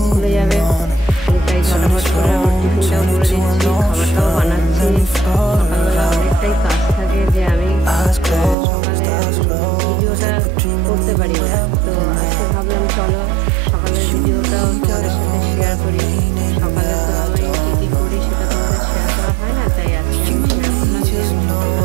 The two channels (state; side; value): drops out; left; at 8.6 s